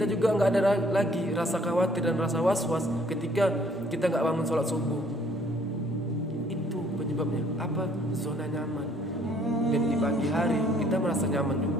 juga nggak ada lagi rasa khawatir dan rasa was-was ketika kita nggak bangun sholat subuh. Itu penyebabnya apa? Zona nyaman. Dan di pagi hari kita merasa nyaman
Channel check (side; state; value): both; normal; correlation 0.61